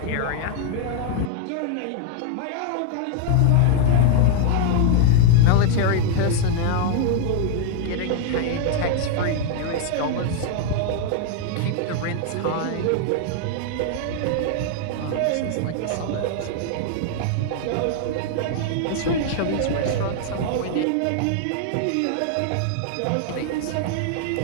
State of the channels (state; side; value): different; both; correlation 0.00